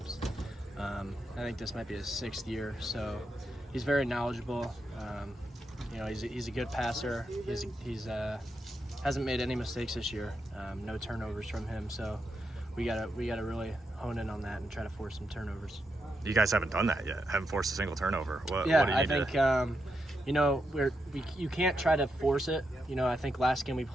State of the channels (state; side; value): normal; both; correlation 0.84